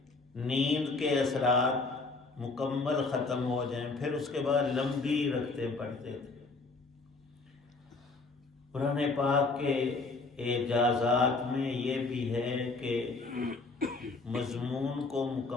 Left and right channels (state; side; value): quieter; right; 3.8 dB